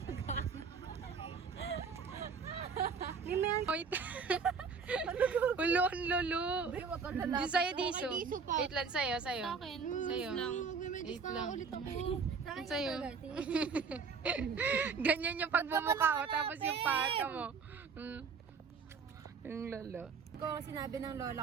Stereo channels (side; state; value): left; quieter; 5.4 dB